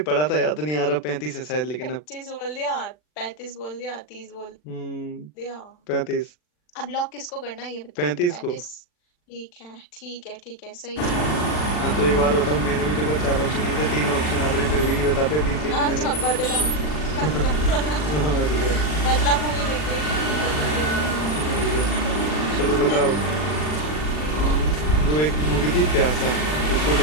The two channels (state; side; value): late; right; 40 ms